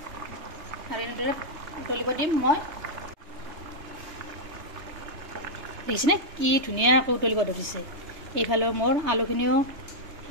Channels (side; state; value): left; late; 3.3 ms